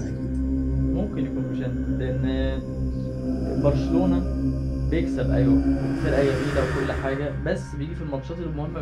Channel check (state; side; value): identical; both; correlation 1.00